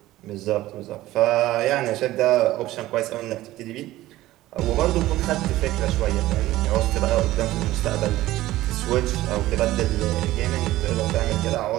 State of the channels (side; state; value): left; quieter; 16.2 dB